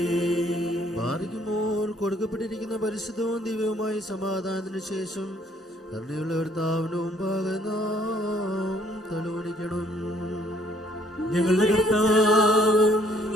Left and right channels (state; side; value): normal; both; correlation 0.64